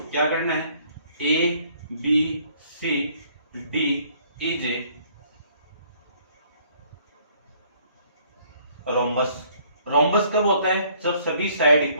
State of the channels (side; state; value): both; inverted; correlation -0.62